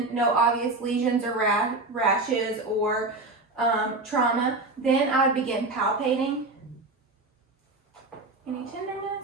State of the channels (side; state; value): left; quieter; 3.1 dB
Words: no obvious lesions or rashes or trauma. Then I would begin palpating. Any